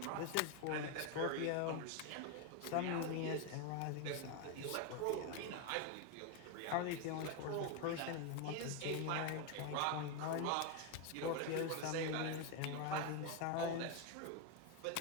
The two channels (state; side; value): different; both; correlation 0.02